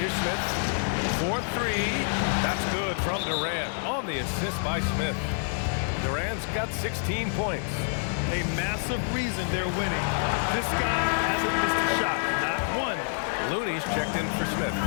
here's Smith. 4-3. That's good from Durant on the assist by Smith. Durant's got 16 points. A massive reason they're winning. This guy hasn't missed a shot, not one. Looney's checked in for Smith.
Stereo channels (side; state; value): right; silent; digital silence